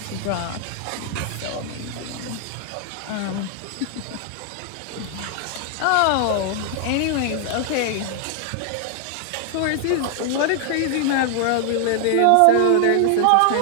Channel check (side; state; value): both; different; correlation 0.00